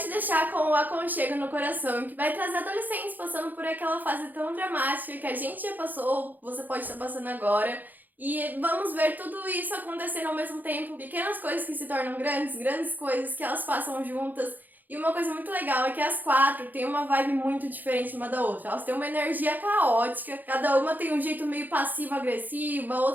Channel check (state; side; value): late; left; 0.085 ms